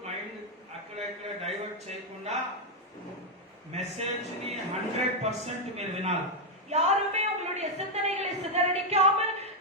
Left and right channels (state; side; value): normal; both; correlation 0.00